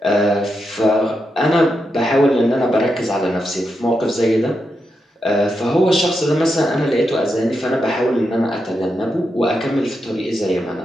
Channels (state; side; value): normal; both; correlation 0.85